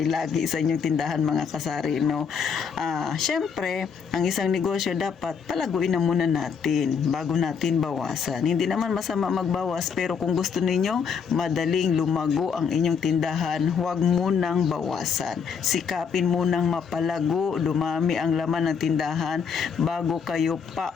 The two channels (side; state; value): right; quieter; 6.4 dB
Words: lagi sa inyong tindahan, mga kasari, no? Syempre, ang isang negosyo dapat palaguin na muna natin bago natin bawasan. Hindi naman masama magbawas, pero kung gusto ninyong madaling lumago ang inyong tindahan, huwag munang bawasan. Sikapin munang mapalago, dumami ang laman ng tindahan bago kayo